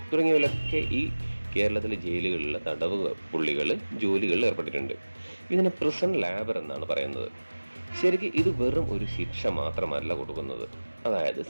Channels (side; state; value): both; inverted; correlation -1.00